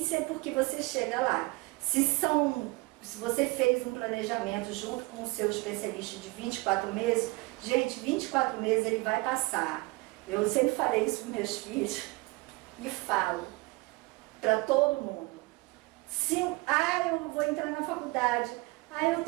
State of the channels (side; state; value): left; quieter; 24.5 dB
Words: porque você chega lá. Se você fez um planejamento junto com o seu especialista de 24 meses, gente, 24 meses ele vai passar. Eu sempre falei isso para meus filhos e falo para todo mundo. Eu vou entrar na faculdade, eu